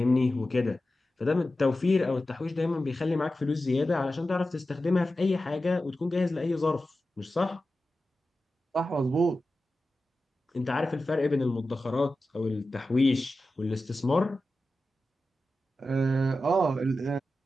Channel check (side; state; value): both; normal; correlation 0.93